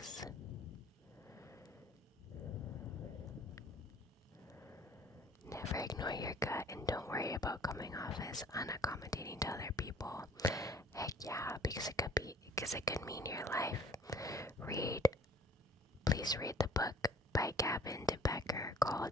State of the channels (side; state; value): both; normal; correlation 0.51